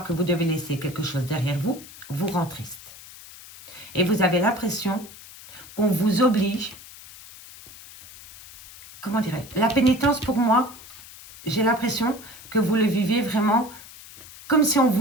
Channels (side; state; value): left; noise; hiss, 18 dB below the sound